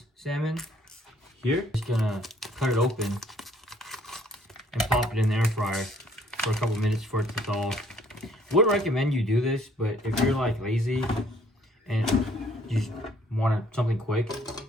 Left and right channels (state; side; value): normal; both; correlation 0.62